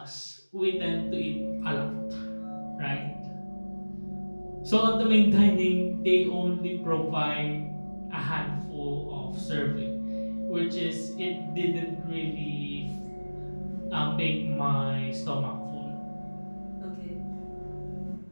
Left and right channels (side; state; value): both; inverted; correlation -1.00